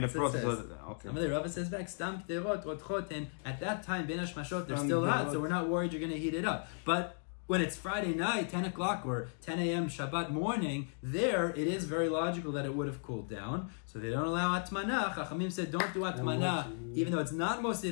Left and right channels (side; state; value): right; silent; 54 dB below the other